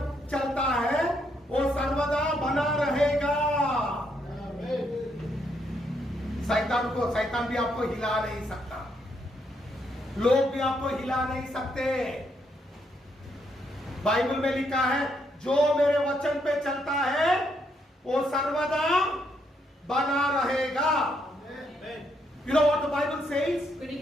चलता है वो सर्वदा बना रहेगा। शैतान भी आपको हिला नहीं सकता, लोग भी आपको हिला नहीं सकते। बाइबल में लिखा है जो मेरे वचन पे चलता है वो सर्वदा बना रहेगा। You know what the Bible says?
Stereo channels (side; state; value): both; normal; correlation 0.76